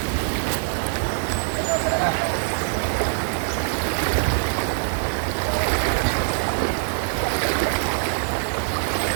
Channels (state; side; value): silent; left; digital silence